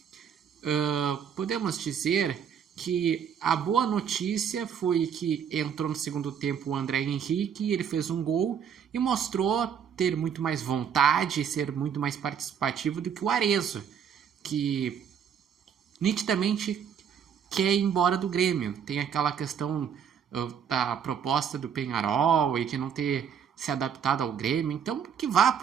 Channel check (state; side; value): quieter; left; 7.9 dB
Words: Podemos dizer que a boa notícia foi que entrou no segundo tempo o André Henrique, ele fez um gol e mostrou ter muito mais vontade e ser muito mais participativo do que o Arezzo, que nitidamente quer ir embora do Grêmio. Tem aquela questão da proposta do Peñarol e de não ter se adaptado ao Grêmio, então que vá